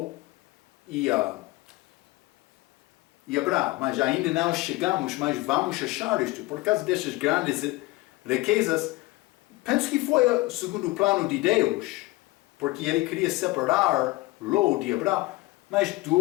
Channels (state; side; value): quieter; right; 20.6 dB